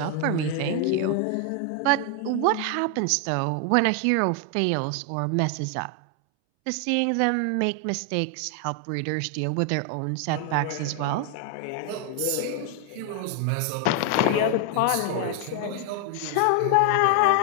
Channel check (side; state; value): both; different; correlation 0.00